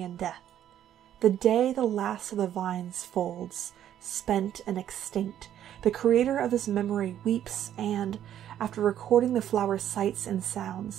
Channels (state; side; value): quieter; left; 10.8 dB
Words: death. The day the last of the vines folds, spent and extinct, the creator of this memory weeps and, after recording the flower's sights and